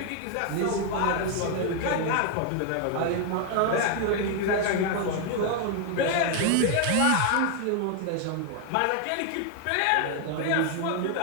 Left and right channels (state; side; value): different; both; correlation 0.00